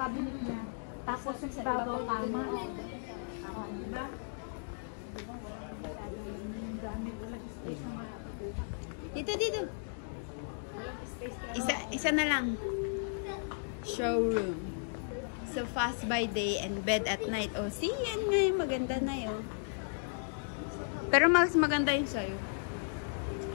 niya. Tapos yung sa ibabaw kama. Diba? Dito. Isa na lang. Showroom. So fast by day and bed at night. Oh, see, yan nga yung maganda na yun. Pero mas maganda yung sa'yo.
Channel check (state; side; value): silent; right; digital silence